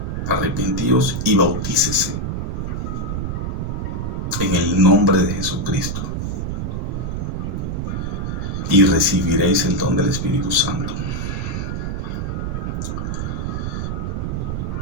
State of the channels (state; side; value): noise; right; rumble, 2 dB below the sound